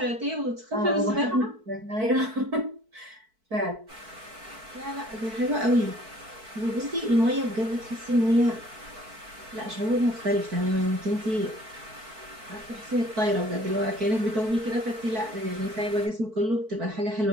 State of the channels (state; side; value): late; left; 4.5 ms